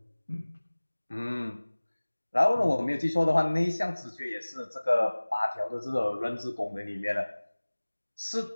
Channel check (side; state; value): both; inverted; correlation -1.00